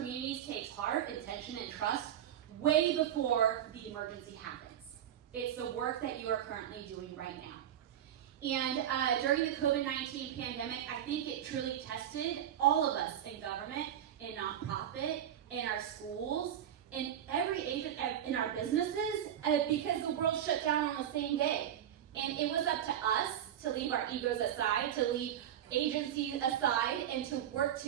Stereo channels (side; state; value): left; quieter; 10.4 dB